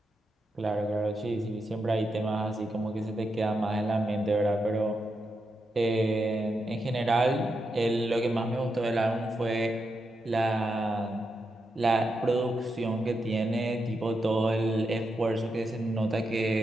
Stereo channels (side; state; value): both; normal; correlation 0.85